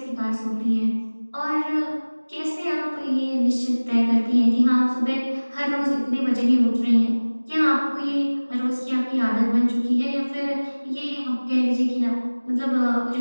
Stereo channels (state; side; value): inverted; both; correlation -1.00